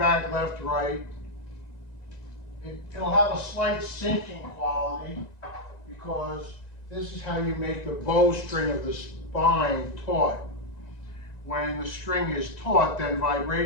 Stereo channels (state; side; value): late; right; 1.9 ms